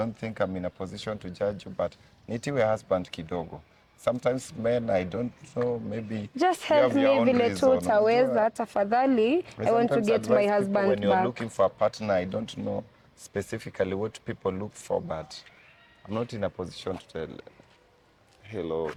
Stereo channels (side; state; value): both; identical; correlation 1.00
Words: think I'm in a position to judge you, but nitiwe husband kidogo. Sometimes men, I don't know, maybe just help me vile tu utaweza tafadhali. I want to get my husband when you're back. looking for a partner, I don't know specifically what people look for, but I'm not in a position to tell. Hello.